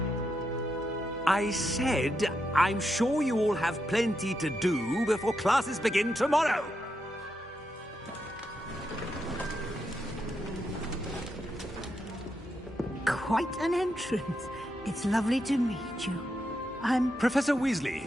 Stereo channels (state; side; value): normal; both; correlation 0.84